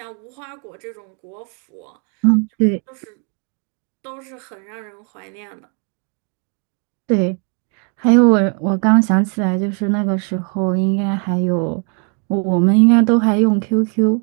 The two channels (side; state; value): left; quieter; 36.9 dB